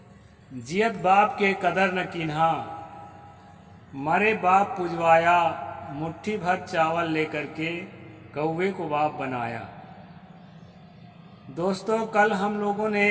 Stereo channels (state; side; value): identical; both; correlation 1.00